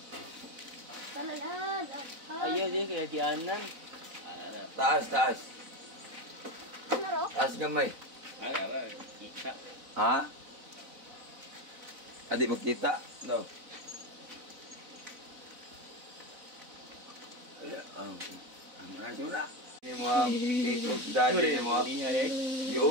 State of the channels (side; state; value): left; late; 4.0 ms